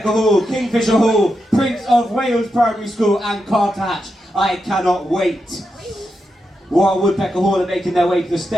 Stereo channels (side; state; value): both; normal; correlation 0.86